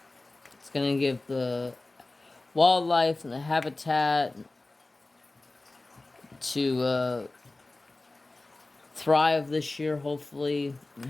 It's going to give the wildlife and the habitat to thrive this year, hopefully, and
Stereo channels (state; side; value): quieter; right; 3.0 dB